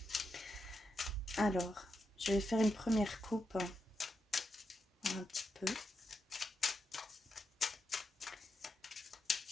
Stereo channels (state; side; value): normal; both; correlation 0.85